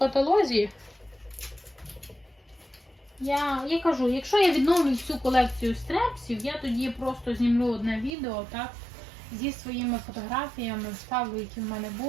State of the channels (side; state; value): left; drops out; at 8.1 s